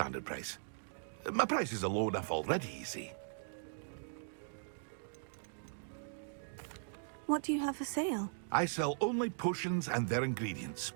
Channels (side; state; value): left; silent; digital silence